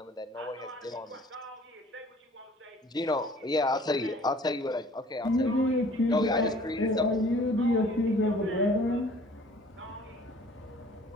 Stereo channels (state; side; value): normal; both; correlation 0.52